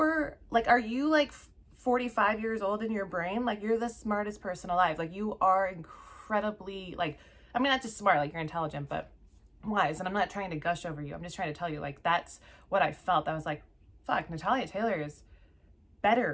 you like 45 years old in your brain? Like, you're the smartest person alive. Like, you are incredibly, like, I mean, not just smart, like you're intelligent, but wise. And I'm not trying to gush over you. I'm just trying to tell you, like, that's what I felt. I was like, fuck, Natalia Taylor is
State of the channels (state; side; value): identical; both; correlation 1.00